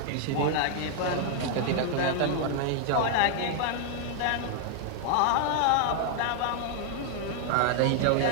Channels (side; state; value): both; different; correlation 0.00